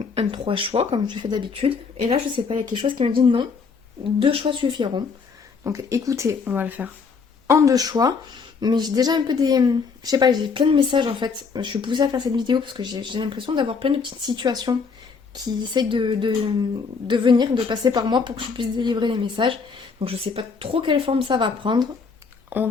un trois choix comme je fais d'habitude. Et là, je sais pas, il y a quelque chose qui me dit non, deux choix suffiront. Donc écoutez, on va le faire en deux choix. Mais j'ai déjà un peu des... Je sais pas, j'ai plein de messages en fait. Je suis poussée à faire cette vidéo parce que j'ai l'impression d'avoir plein de petites situations qui essayent de venir, de passer par moi pour que je puisse délivrer les messages. Donc je sais pas trop quelle forme ça va prendre. On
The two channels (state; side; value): quieter; right; 5.2 dB